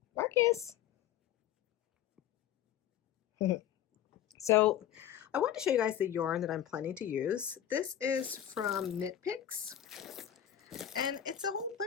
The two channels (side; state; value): right; quieter; 10.7 dB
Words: Marcus. So I want to show you guys the yarn that I'm planning to use. This is from Knit Picks, and it's a whole